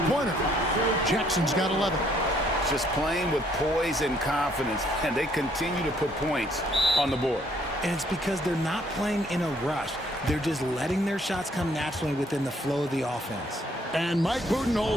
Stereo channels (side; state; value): both; normal; correlation 0.65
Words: Jackson's got 11. Just playing with poise and confidence, and they continue to put points on the board. And it's because they're not playing in a rush. They're just letting their shots come naturally within the flow of the offense. And Mike